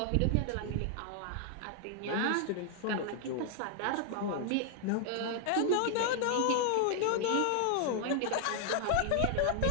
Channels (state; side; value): different; both; correlation 0.00